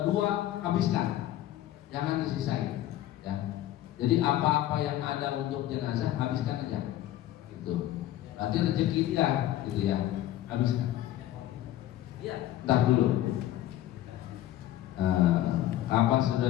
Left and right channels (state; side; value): quieter; right; 13.6 dB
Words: 2 habiskan, jangan disisain ya. Jadi apa-apa yang ada untuk jenazah habiskan aja gitu. Berarti rezeki dia gitu ya, habiskan. Iya. Ntar dulu. Kapas